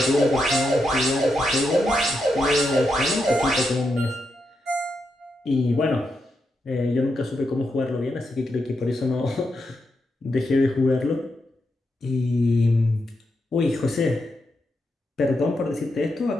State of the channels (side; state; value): both; normal; correlation 0.84